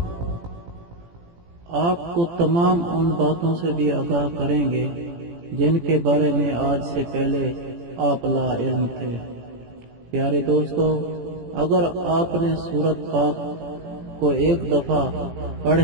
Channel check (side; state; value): left; late; 17 ms